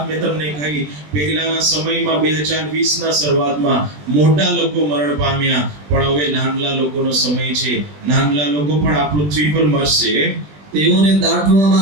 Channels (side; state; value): left; late; 20 ms